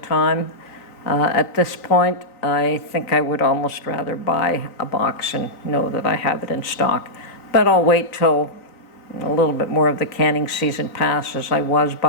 At this point, I think I would almost rather buy a box and know that I have it in stock. But I'll wait till a little bit more of the canning season passes. I was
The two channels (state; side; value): late; right; 3.9 ms